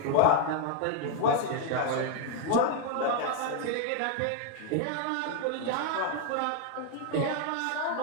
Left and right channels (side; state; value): both; different; correlation 0.00